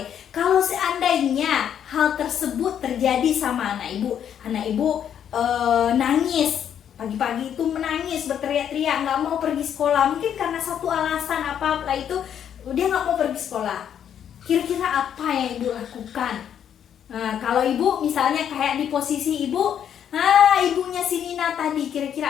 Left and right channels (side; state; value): right; quieter; 9.1 dB